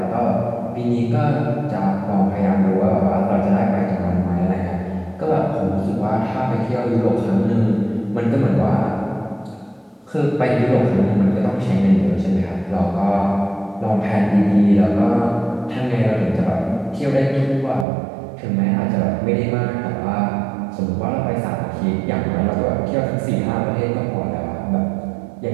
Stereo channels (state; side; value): drops out; left; at 17.9 s